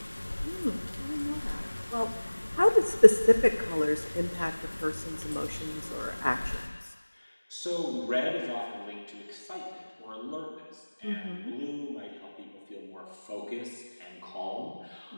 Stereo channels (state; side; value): inverted; both; correlation -1.00